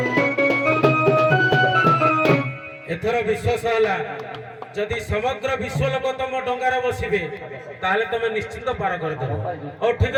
ଏଥର ବିଶ୍ୱାସ ହେଲା ଯଦି ସମଗ୍ର ବିଶ୍ୱ ଲୋକ ତମ ଡଙ୍ଗାରେ ବସିବେ ତାହେଲେ ତମେ ନିଶ୍ଚିତ ପାର କରିଦେବ ହଉ ଠିକ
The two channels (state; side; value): identical; both; correlation 1.00